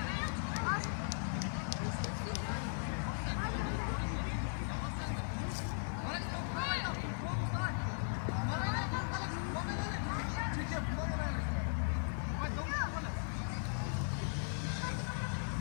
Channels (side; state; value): right; silent; digital silence